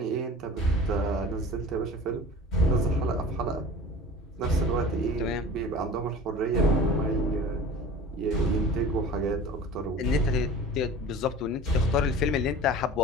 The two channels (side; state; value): both; normal; correlation 0.39